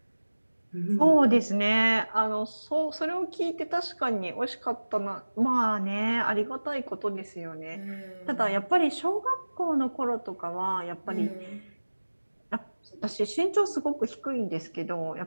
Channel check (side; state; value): both; inverted; correlation -1.00